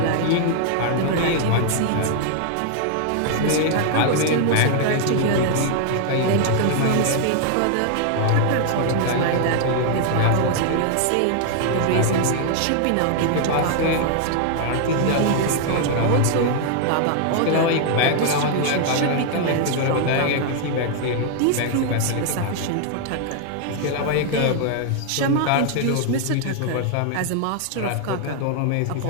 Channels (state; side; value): different; both; correlation 0.00